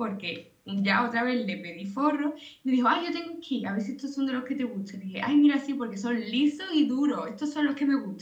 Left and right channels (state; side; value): identical; both; correlation 1.00